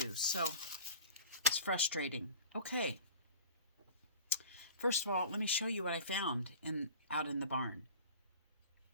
so it's frustrating. Okay. First of all, let me show you what I found out in the barn.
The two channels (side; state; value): both; inverted; correlation -0.40